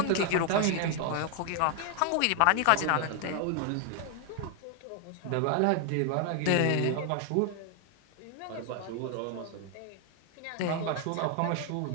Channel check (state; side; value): different; both; correlation 0.00